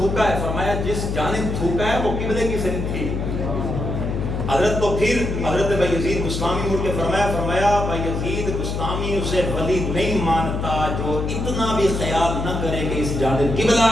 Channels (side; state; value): left; noise; hum, 2 dB below the sound